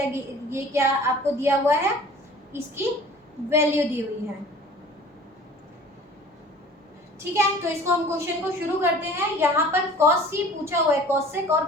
ये क्या आपको दिया हुआ है? इसकी वैल्यू दी हुई है। ठीक है, तो इसको हम क्वेश्चन को शुरू करते हैं। यहाँ पर cos ही पूछा हुआ है, cosec और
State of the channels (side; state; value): both; normal; correlation 0.46